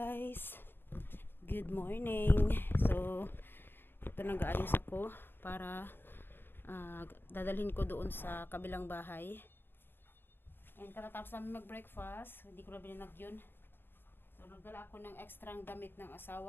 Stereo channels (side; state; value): right; late; 0.10 ms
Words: good morning. So ito, nag-aayos ako para dadalhin ko doon sa kabilang bahay. And katatapos namin mag-breakfast, hindi ko na binanag yun. So nagdala ako ng extrang damit ng